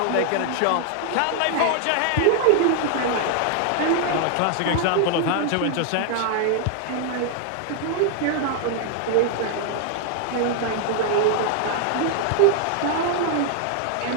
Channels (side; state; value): both; different; correlation 0.00